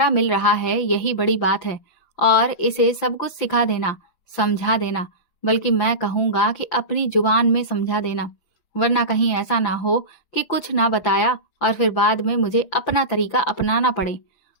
मिल रहा है यही बड़ी बात है। और इसे सब कुछ सिखा देना, समझा देना, बल्कि मैं कहूँगा कि अपनी जुबान में समझा देना, वरना कहीं ऐसा ना हो कि कुछ ना बताया और फिर बाद में मुझे अपना तरीका अपनाना पड़े।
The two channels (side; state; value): right; late; 5.9 ms